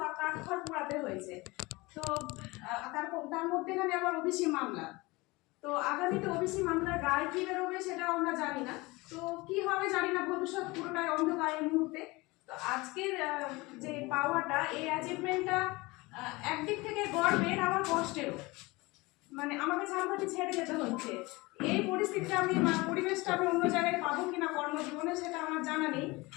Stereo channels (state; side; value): quieter; right; 23.0 dB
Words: কাঠখড় পোড়াতে হয়েছে। তো তার মধ্যেখানে আবার ওবিসি মামলা, তো আগামীতে ওবিসি মামলার রায় কি বেরোবে সেটা আমরা জানি না। তো কি হবে জানি না, ভবিষ্যৎ পুরোটাই অন্ধকার এই মুহূর্তে। তো আজকের যে পাওয়াটা, এই অ্যাচিভমেন্টটা একদিক থেকে গর্বের, আবার কষ্টেরও। মানে আমাকে ঝালকাঠি ছেড়ে যেতে হচ্ছে, এই পরিস্থিতিটা পরিবেশটা আমি অন্য জায়গায় পাবো কিনা কর্মজীবনে সেটা আমার জানা নেই,